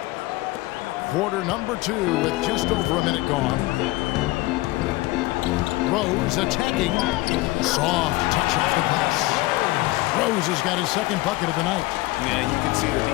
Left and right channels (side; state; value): right; quieter; 20.4 dB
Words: Quarter number 2 with just over a minute gone. Rose attacking. Soft touch off the glass. Rose has got his second bucket of the night. Yeah, you can see the